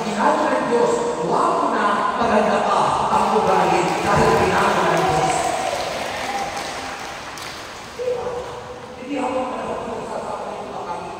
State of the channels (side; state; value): both; identical; correlation 1.00